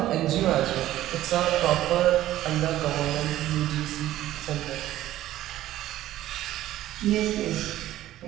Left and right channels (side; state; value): left; quieter; 14.0 dB